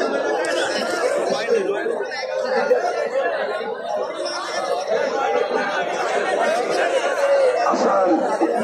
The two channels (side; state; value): both; identical; correlation 1.00